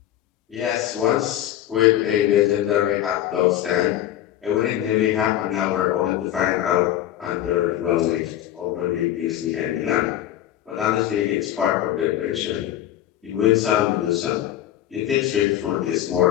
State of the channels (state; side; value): quieter; right; 12.3 dB